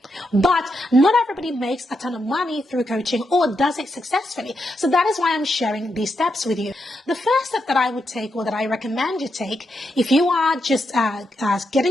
but not everybody makes a ton of money through coaching or does it successfully. So that is why I'm sharing these steps with you. The first step that I would take, or that I recommend you take if you are just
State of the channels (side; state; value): both; normal; correlation 0.83